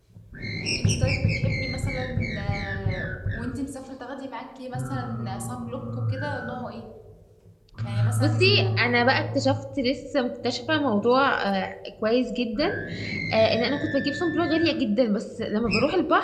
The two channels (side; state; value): both; identical; correlation 1.00